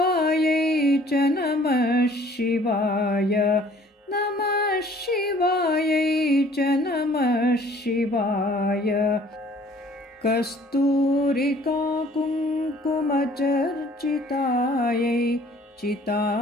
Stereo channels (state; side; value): normal; both; correlation 0.55